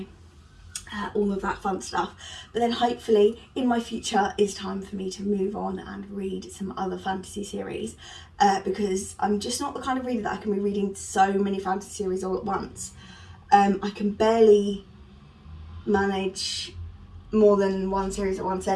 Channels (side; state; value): both; identical; correlation 1.00